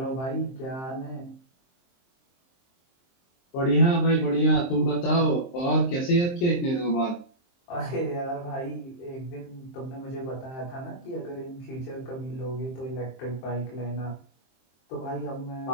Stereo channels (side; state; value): right; late; 23 ms